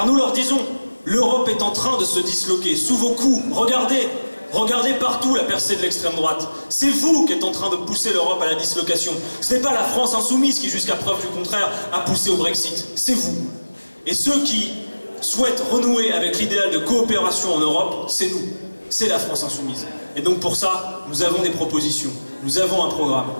nous leur disons, l'Europe est en train de se disloquer sous vos coups, regardez partout la percée de l'extrême droite, c'est vous qui êtes en train de pousser l'Europe à la dislocation, ce n'est pas la France insoumise qui, jusqu'à preuve du contraire, a poussé au Brexit, c'est vous. Et ceux qui souhaitent renouer avec l'idéal de coopération en Europe, c'est nous. c'est la France insoumise. Et donc pour ça, nous avons des propositions, nous avons un programme.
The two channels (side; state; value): both; inverted; correlation -1.00